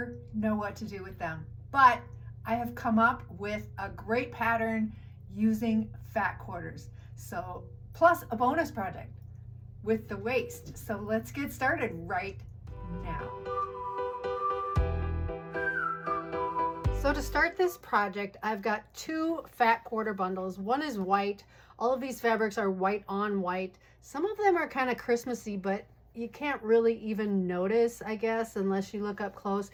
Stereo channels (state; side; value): identical; both; correlation 1.00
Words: know what to do with them. But I have come up with a great pattern using fat quarters. So, plus a bonus project with the waist. So let's get started right now. So to start this project, I've got 2 fat quarter bundles. One is white. All of these fabrics are white on white. Some of them are kind of Christmassy, but you can't really even notice, I guess, unless you look up close.